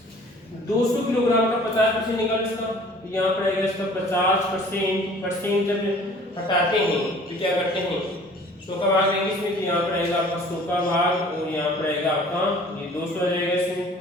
200 किलोग्राम का 50% निकाल इसका, तो यहाँ पर आएगा इसका 50%। जब हटाते हैं तो क्या करते हैं 100 का भाग लेंगे इसमें, तो यहाँ पर आएगा आपका 100 का भाग और यहाँ पर आएगा आपका ये 200 आ जाएगा।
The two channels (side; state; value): both; normal; correlation 0.50